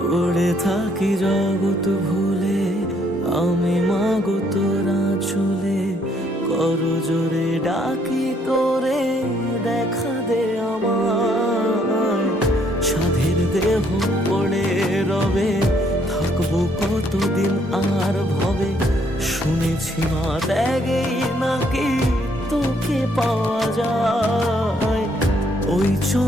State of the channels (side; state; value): both; normal; correlation 0.68